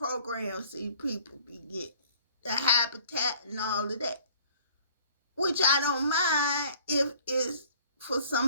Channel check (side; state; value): both; inverted; correlation -0.54